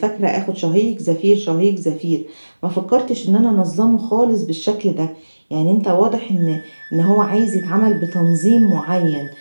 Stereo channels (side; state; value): both; inverted; correlation -1.00